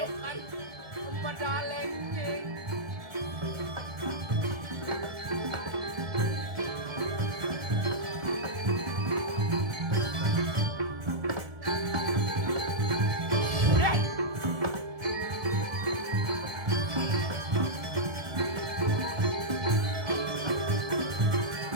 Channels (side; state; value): left; late; 1.8 ms